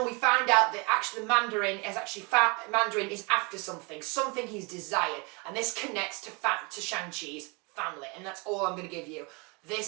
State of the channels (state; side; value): quieter; left; 29.9 dB